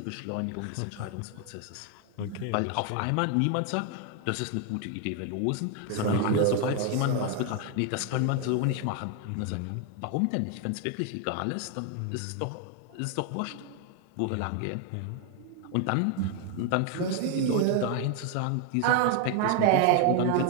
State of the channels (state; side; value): different; both; correlation 0.01